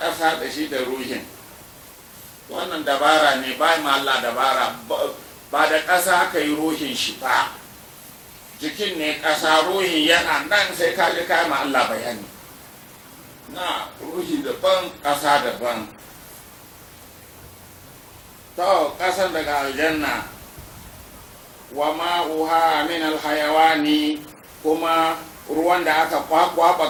da shi da ruhin. Wannan dabara ne, ba ma Allah dabara, ba da ƙasa aka yi ruhin shi ba, jikin ne ƙasa, ruhi yana nan, sai ka ji kai ma Allah bayani. Na ruhi daban, ƙasa daban. To ƙasan daga aljanna, wa ma'uha min alhayawani, kuma ruwan da aka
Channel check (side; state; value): both; identical; correlation 1.00